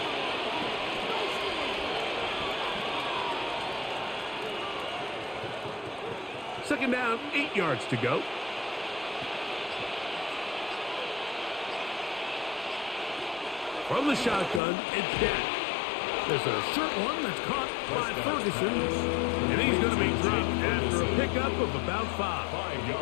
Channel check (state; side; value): drops out; right; at 14.6 s